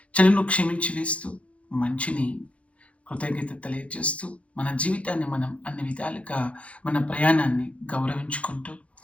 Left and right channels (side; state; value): right; late; 0.063 ms